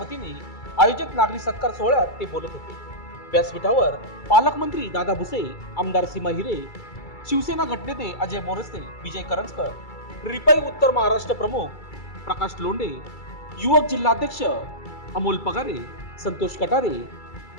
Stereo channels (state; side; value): late; right; 2.3 ms